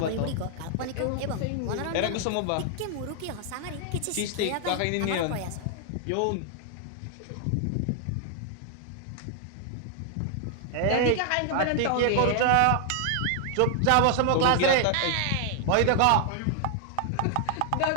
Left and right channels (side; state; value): both; different; correlation 0.00